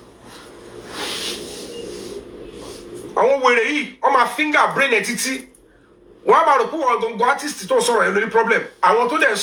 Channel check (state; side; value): identical; both; correlation 1.00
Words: I won't worry on my finger brain entity. One about the poor don't go artist to sorrow any problem. I want to then